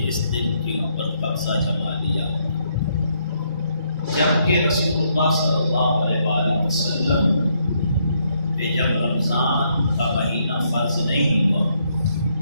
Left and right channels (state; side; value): inverted; both; correlation -0.74